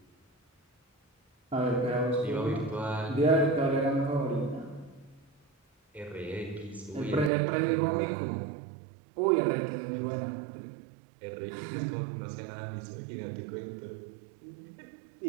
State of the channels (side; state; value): left; drops out; at 7.3 s